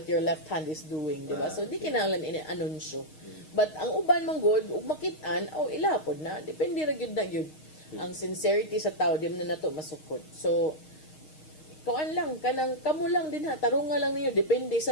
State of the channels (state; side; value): late; right; 6.5 ms